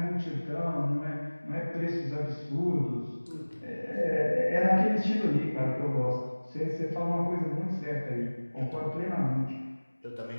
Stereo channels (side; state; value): both; inverted; correlation -1.00